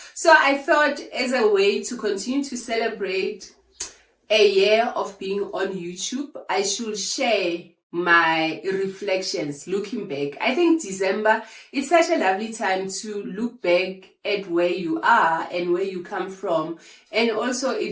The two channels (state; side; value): identical; both; correlation 1.00